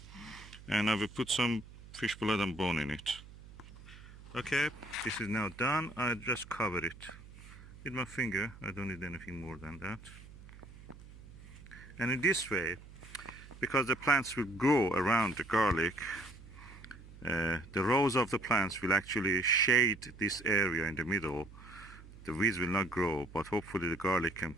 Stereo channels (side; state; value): right; noise; hum, 18 dB below the sound